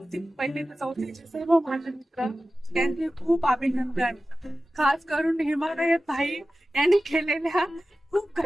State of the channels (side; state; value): both; normal; correlation 0.95